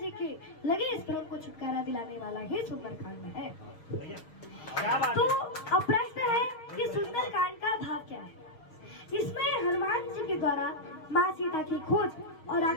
के लगे इस भ्रम को छुटकारा दिलाने वाला ही सुंदरकांड है। तो अब प्रश्न है कि सुंदरकांड का भाव क्या है। इसमें हनुमान जी के द्वारा माँ सीता की खोज और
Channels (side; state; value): right; late; 6.2 ms